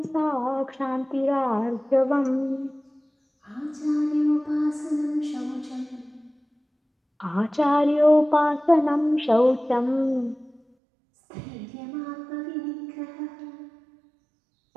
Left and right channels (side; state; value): left; drops out; at 10.6 s